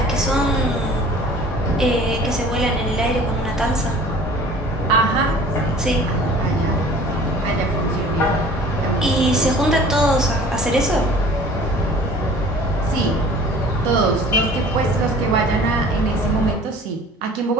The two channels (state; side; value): normal; both; correlation 0.47